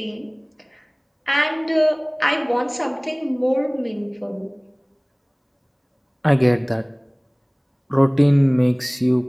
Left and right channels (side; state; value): both; identical; correlation 1.00